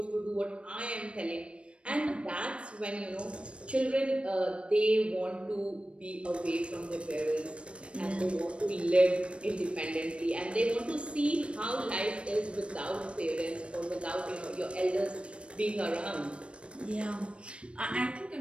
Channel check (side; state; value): left; late; 0.059 ms